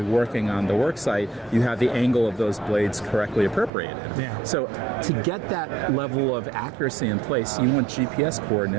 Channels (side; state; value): left; drops out; at 3.7 s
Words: working on the work site, you have the angle of those blades correctly appropriated. Yeah. So to get that level of accuracy in place, you want GPS